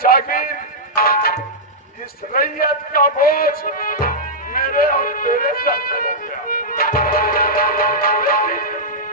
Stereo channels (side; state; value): both; normal; correlation -0.10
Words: जागीर, इस रैयत का बोझ मेरे और तेरे सर पे हो गया।